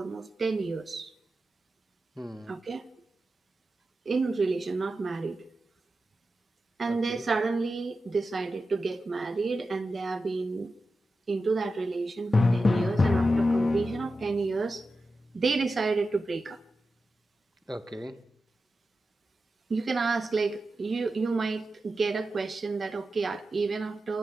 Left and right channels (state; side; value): normal; both; correlation 0.91